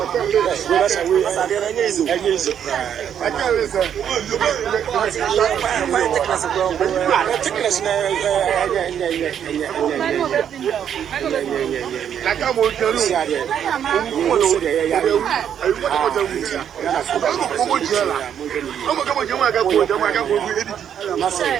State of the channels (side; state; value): left; quieter; 9.0 dB